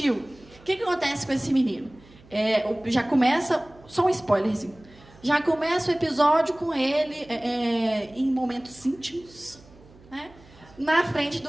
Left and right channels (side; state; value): right; noise; hum, 25 dB below the sound